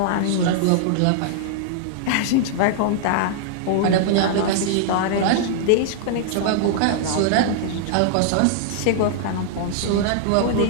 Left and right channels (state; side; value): different; both; correlation -0.01